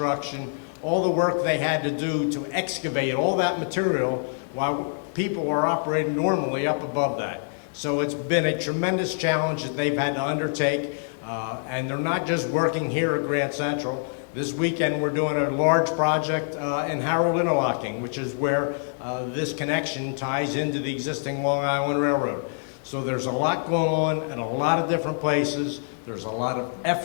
all the work they had to do to excavate all that material while people are operating normally up above that. So it's been a tremendous challenge that they've had to undertake, and they're not just working here at Grand Central. This weekend we're doing a large project in Harold Interlocking, which is where this connection ties into the existing Long Island Railroad. So there's a lot going on at a lot of different places. There's a lot of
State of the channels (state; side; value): silent; right; digital silence